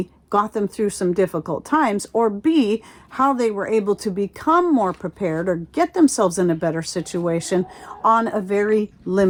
got them through some difficult times, or B, how they were able to become more prepared or get themselves in a better situation on a very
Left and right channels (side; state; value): both; identical; correlation 1.00